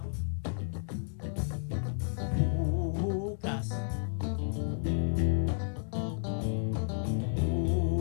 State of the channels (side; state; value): right; silent; 56 dB below the other